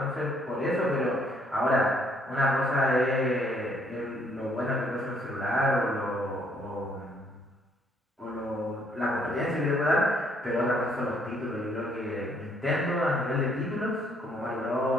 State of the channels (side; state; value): both; normal; correlation 0.67